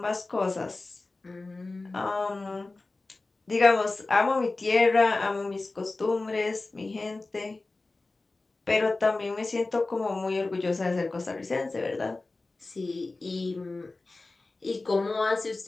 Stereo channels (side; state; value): right; quieter; 3.3 dB